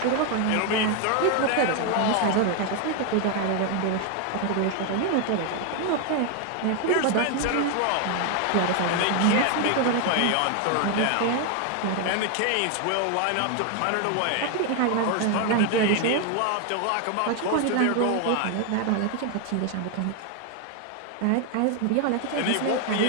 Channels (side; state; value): both; different; correlation 0.01